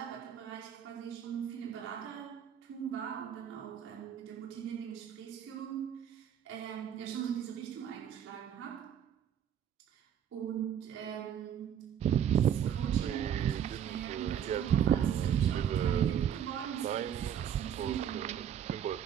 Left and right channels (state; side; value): quieter; left; 9.2 dB